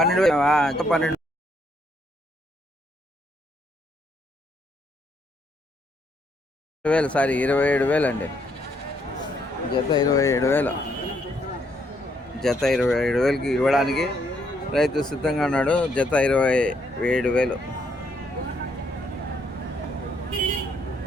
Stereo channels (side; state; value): both; normal; correlation 0.72